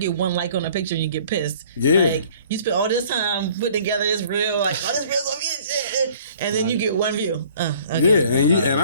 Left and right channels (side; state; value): both; inverted; correlation -0.54